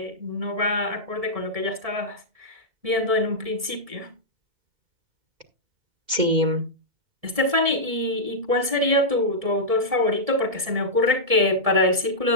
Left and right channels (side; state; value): left; late; 1.7 ms